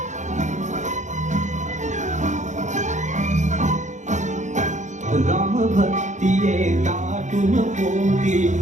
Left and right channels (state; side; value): late; left; 0.35 ms